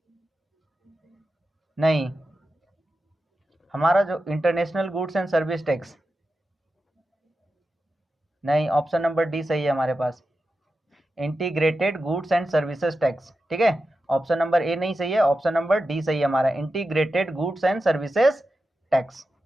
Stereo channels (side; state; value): both; normal; correlation 0.91